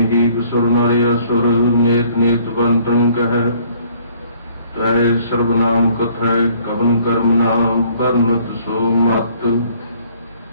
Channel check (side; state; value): both; inverted; correlation -0.60